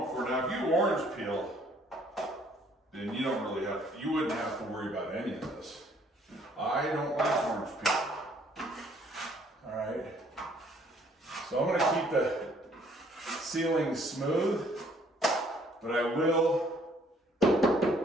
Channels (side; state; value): both; normal; correlation 0.62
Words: for. Now, if you orange peel, then you wouldn't have to worry about any of this. I don't like orange peel. All right. So I'm gonna keep the ceiling smooth, but I will